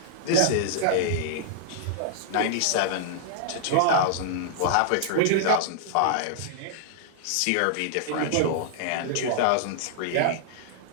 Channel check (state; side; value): different; both; correlation -0.01